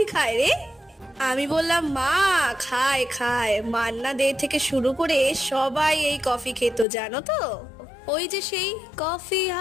খায় রে? আমি বললাম মা খায় খায়, মান্না দে থেকে শুরু করে সবাই এই কফি খেত জানো তো। ওই যে সেই কফি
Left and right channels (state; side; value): drops out; right; at 6.9 s